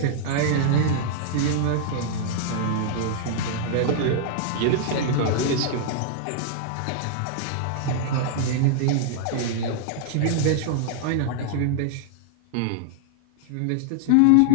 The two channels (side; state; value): both; different; correlation -0.01